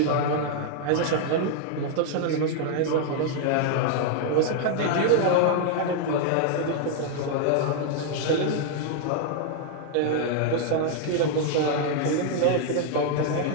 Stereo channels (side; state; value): both; different; correlation 0.00